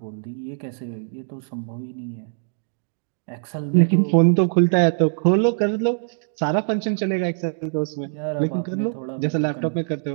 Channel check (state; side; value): silent; left; digital silence